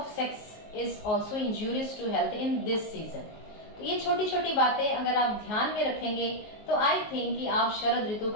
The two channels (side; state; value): right; late; 19 ms